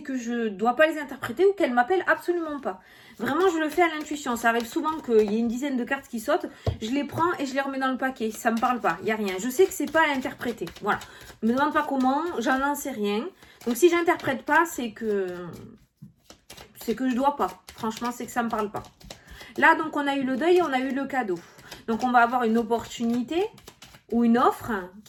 je dois pas les interpréter ou qu'elles m'appellent absolument pas. Vraiment, je le fais à l'intuition. Ça arrive souvent qu'il y ait une dizaine de cartes qui sautent, je les prends et je les remets dans le paquet. Ça me parle pas, il y a rien. Je sais que c'est pas à interpréter. Voilà. Ne me demande pas comment, j'en sais rien. Donc, si j'interprète pas, c'est que je dois pas. Franchement, c'est que ça me parle pas. Là, donc, on a eu le deuil et on a eu le cadeau. Donc, on va avoir une opportunité ou une offre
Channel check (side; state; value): both; identical; correlation 1.00